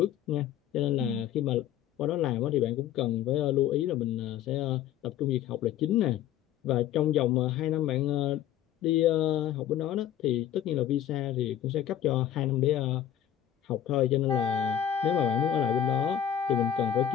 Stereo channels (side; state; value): right; quieter; 10.6 dB